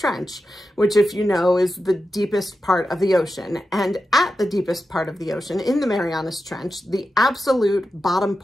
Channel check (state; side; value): normal; both; correlation 0.91